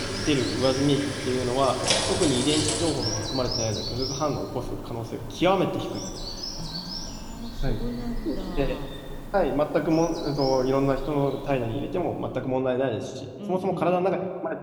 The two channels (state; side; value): identical; both; correlation 1.00